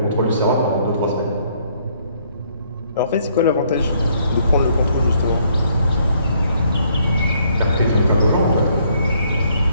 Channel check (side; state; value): both; inverted; correlation -0.67